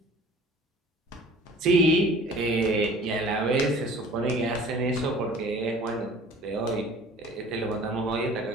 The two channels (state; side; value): normal; both; correlation 0.47